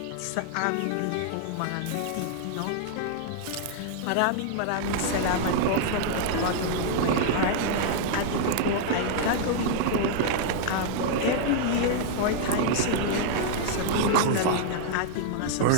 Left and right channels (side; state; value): both; different; correlation -0.01